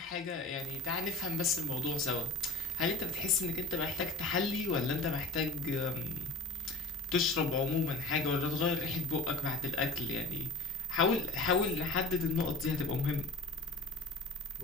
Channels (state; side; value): quieter; right; 3.1 dB